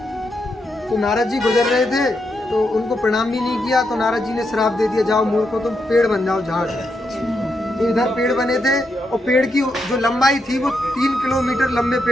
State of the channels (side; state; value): both; normal; correlation 0.82